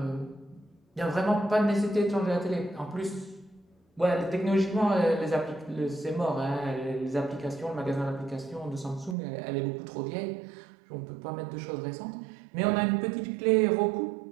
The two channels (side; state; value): left; drops out; at 9.2 s